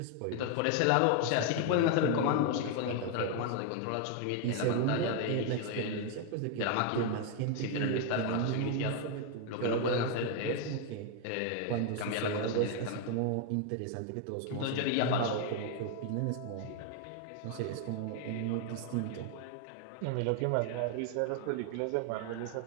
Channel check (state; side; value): different; both; correlation 0.01